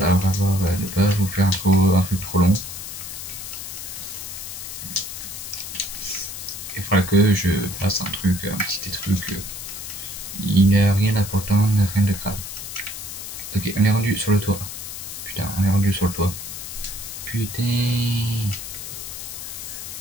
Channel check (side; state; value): left; noise; hiss, 9 dB below the sound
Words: vous faire un truc trop long. Il faudra que je fasse un petit truc. Il n'y a rien d'important, rien de grave. Ok, on est rendu sur le toit. Putain, on est rendu sur le toit. Putain.